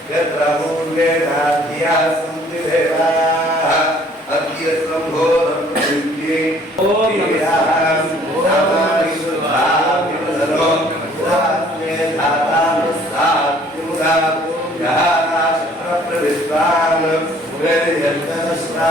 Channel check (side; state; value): both; normal; correlation 0.57